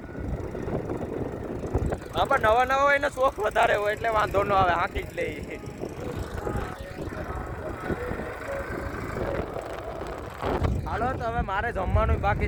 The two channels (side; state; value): both; identical; correlation 1.00